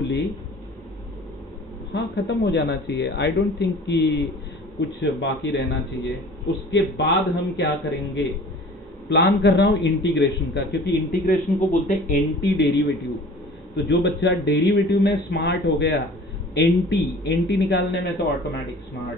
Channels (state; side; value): normal; both; correlation 0.45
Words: हाँ ख़त्म हो जाना चाहिए। आई डोंट थिंक कि कुछ बाकी रहना चाहिए। उसके बाद हम क्या करेंगे, प्लान कर रहा हूँ इंटीग्रेशन का, क्योंकि इंटीग्रेशन को बोलते हैं एंटी डेरिवेटिव। तो जो बच्चा डेरिवेटिव में स्मार्ट हो गया, एंटी निकालने में तो ऑटोमेटिक